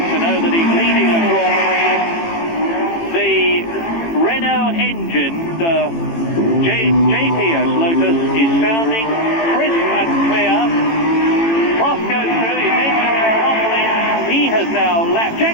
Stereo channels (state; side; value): late; right; 18 ms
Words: know that he's leading a Grand Prix. The Renault engine, the JPS Lotus, is sounding crisp and clear. Prost goes through, his engine is rumbling. He has now lapped,